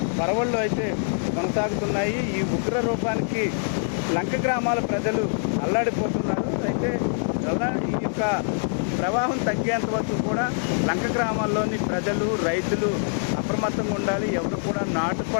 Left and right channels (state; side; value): silent; right; digital silence